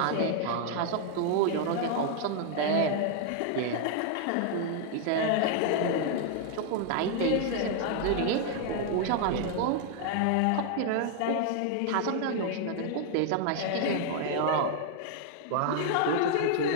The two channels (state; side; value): different; both; correlation 0.00